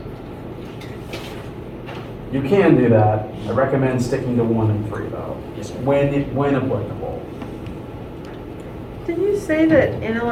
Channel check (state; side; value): identical; both; correlation 1.00